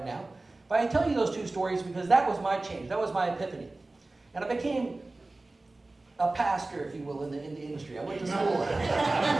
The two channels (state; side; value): quieter; left; 3.1 dB